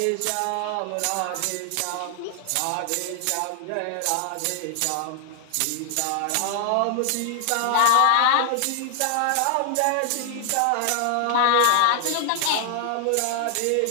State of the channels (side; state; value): both; different; correlation 0.00